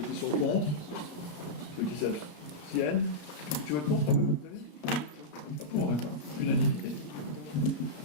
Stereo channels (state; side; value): late; right; 33 ms